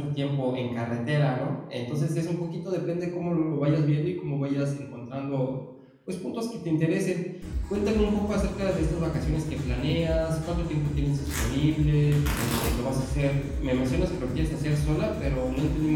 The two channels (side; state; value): both; identical; correlation 1.00